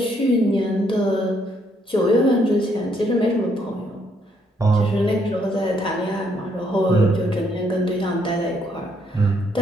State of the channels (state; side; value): normal; both; correlation 0.71